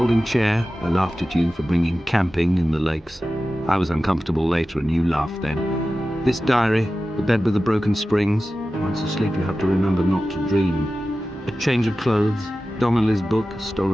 chair, I laughed at you for bringing camping in the lakes. I was uncomfortable later and you laughed then. This diary, the bed with the broken springs. Once asleep you have to remember not to dream. A change of clothes, Donnelly's book,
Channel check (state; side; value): normal; both; correlation 0.95